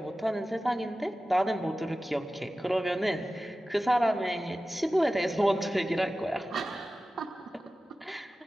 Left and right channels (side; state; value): both; normal; correlation 0.95